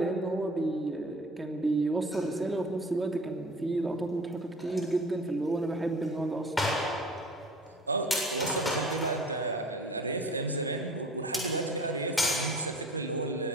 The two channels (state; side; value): normal; both; correlation 0.43